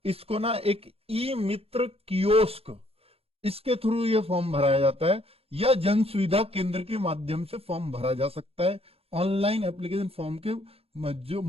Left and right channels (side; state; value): left; late; 0.28 ms